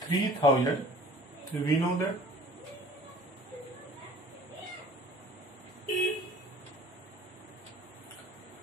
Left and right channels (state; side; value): normal; both; correlation 0.48